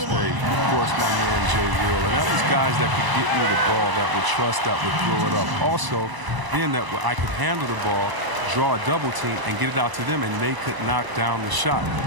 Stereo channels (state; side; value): late; left; 1.0 ms